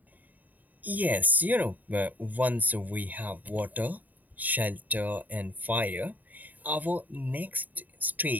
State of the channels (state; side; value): late; left; 0.081 ms